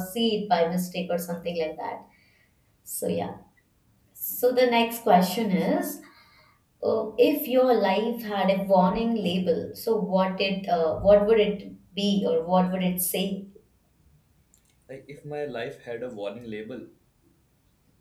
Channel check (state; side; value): identical; both; correlation 1.00